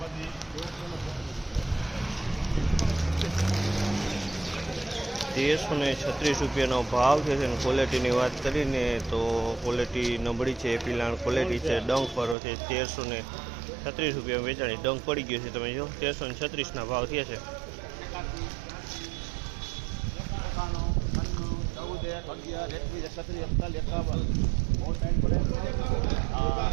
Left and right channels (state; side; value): drops out; left; at 12.4 s